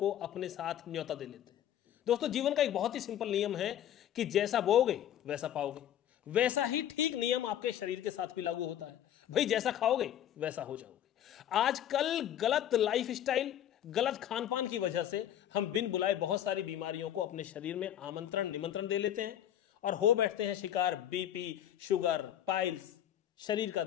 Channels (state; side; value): quieter; right; 10.9 dB